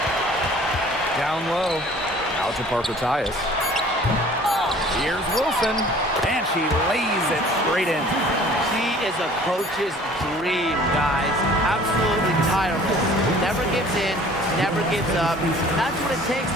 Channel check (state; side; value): normal; both; correlation 0.50